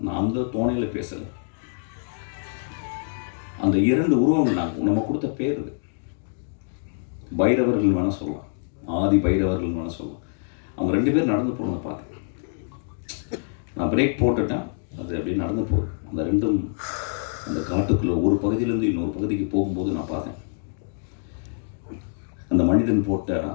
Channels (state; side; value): silent; right; digital silence